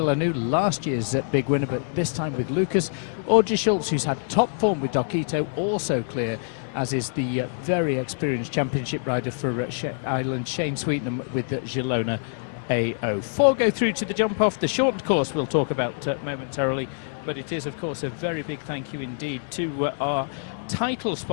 last year's big winner, but this time with Lucas. Audrey Schultz, who's had top form with Dokito, also clear, as is the very experienced championship rider for Ireland, Shane Sweetnam with Girona AO. 4 go through to the jump off. The shortened course we'll talk about momentarily, but it is, of course, a very big thank you indeed to our title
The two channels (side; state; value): right; silent; digital silence